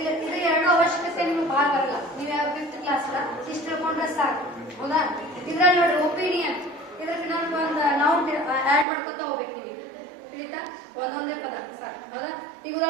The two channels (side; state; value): left; drops out; at 8.8 s